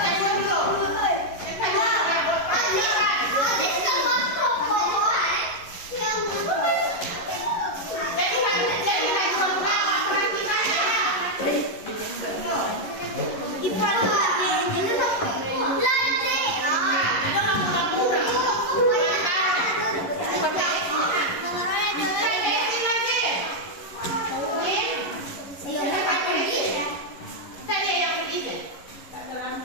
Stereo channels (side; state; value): right; late; 11 ms